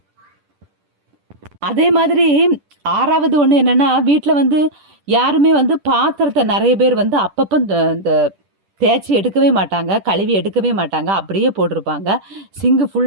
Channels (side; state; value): left; late; 10 ms